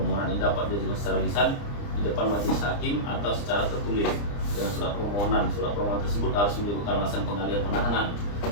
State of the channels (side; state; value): right; late; 29 ms